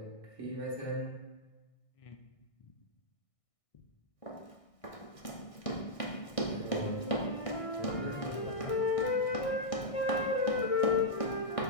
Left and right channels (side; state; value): right; late; 1.6 ms